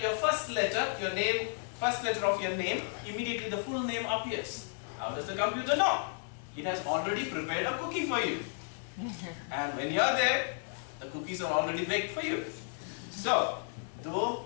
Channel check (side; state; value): right; silent; 56 dB below the other